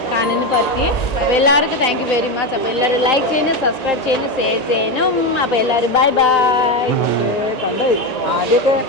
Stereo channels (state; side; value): late; right; 1.9 ms